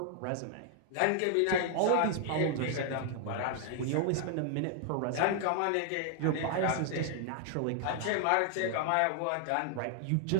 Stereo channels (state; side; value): different; both; correlation 0.00